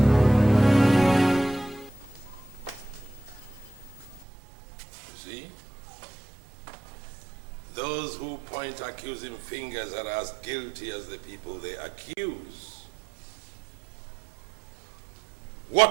Accusing fingers are as guilty as the people they accuse.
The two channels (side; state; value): left; drops out; at 4.2 s